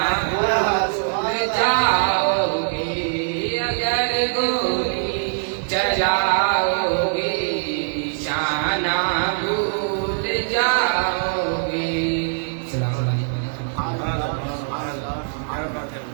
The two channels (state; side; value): silent; left; digital silence